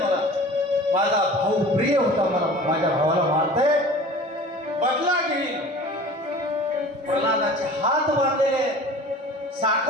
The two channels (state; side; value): normal; both; correlation 0.42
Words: मला. माझा भाऊ प्रिय होता. मला माझ्या भावाला मारतंय बदला घेईल. प्रल्हादाचे हात बांधलेले